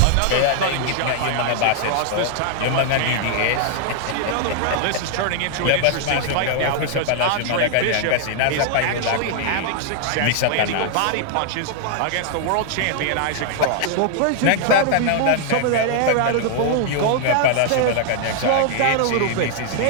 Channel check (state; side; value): different; both; correlation -0.01